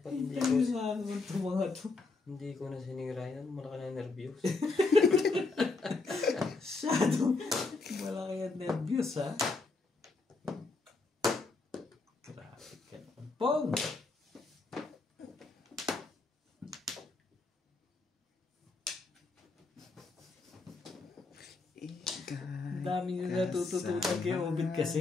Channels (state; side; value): quieter; right; 3.8 dB